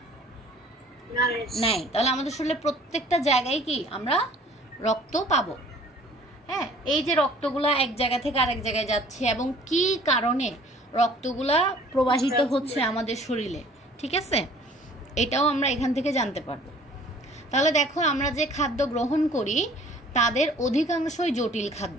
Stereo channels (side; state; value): both; normal; correlation 0.53